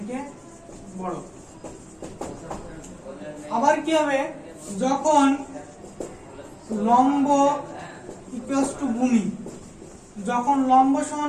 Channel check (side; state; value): both; identical; correlation 1.00